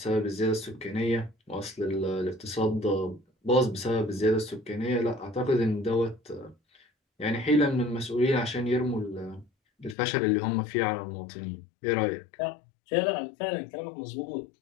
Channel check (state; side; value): drops out; right; at 10.0 s